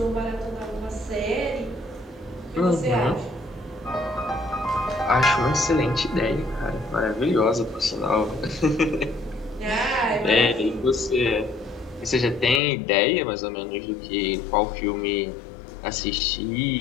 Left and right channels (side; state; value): right; drops out; at 12.6 s